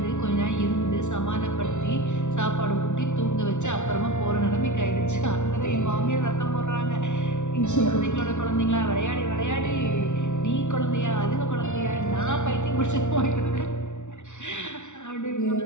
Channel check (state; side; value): late; right; 0.84 ms